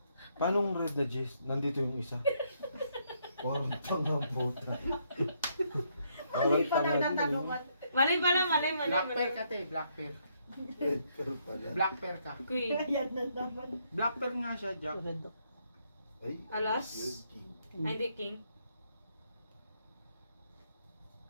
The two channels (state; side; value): inverted; both; correlation -0.73